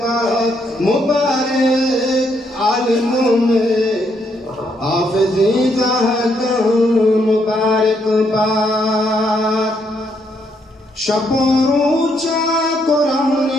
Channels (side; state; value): both; normal; correlation 0.74